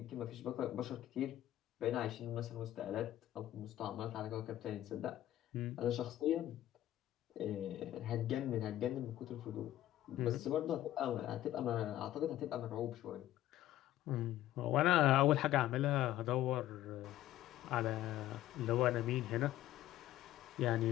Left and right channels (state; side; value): quieter; right; 13.6 dB